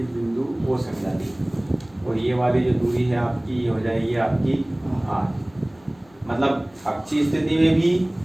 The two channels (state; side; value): noise; left; hum, 30 dB below the sound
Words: बिंदु O से मिला दिया, और ये वाली जो दूरी है आपकी, ये हो जाएगी आपकी R। मतलब अक्षीय स्थिति में भी